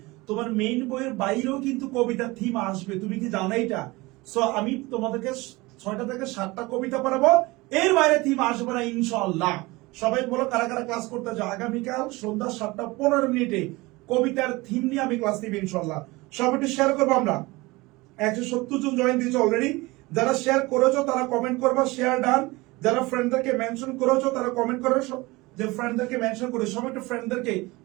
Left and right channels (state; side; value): quieter; left; 22.2 dB